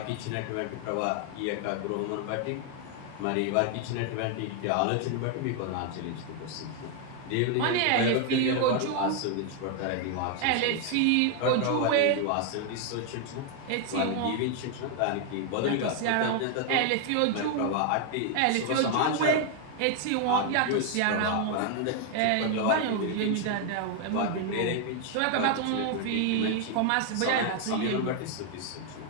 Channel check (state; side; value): different; both; correlation 0.00